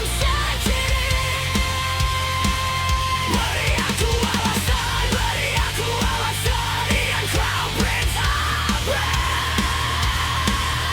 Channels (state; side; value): identical; both; correlation 1.00